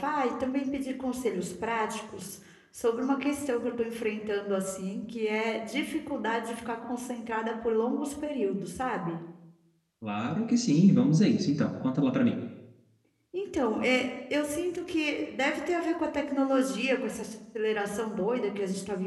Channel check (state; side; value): identical; both; correlation 1.00